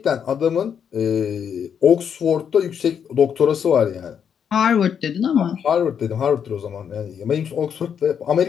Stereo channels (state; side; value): quieter; right; 7.8 dB